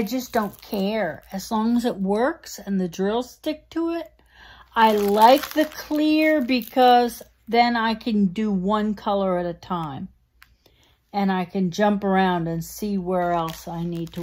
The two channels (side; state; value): both; identical; correlation 1.00